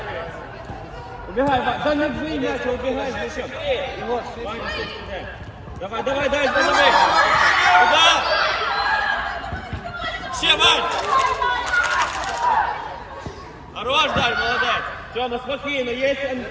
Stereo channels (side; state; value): both; identical; correlation 1.00